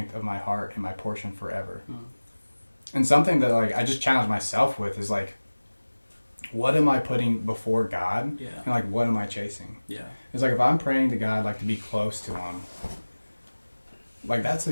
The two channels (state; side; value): inverted; both; correlation -1.00